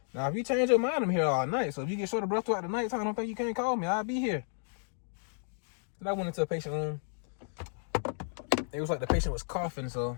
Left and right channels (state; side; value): silent; right; 56 dB below the other